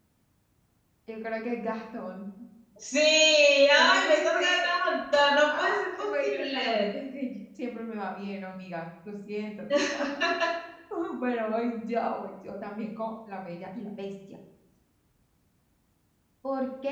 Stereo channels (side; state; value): both; identical; correlation 1.00